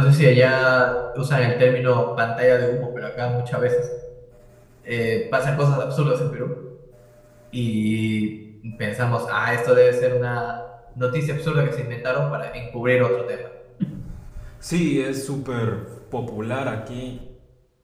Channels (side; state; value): both; identical; correlation 1.00